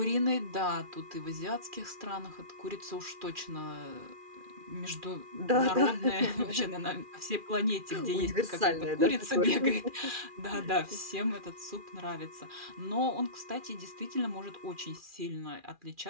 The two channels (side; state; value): left; late; 2.4 ms